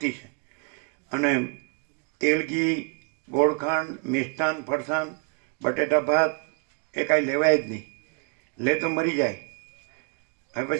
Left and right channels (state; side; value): quieter; left; 35.1 dB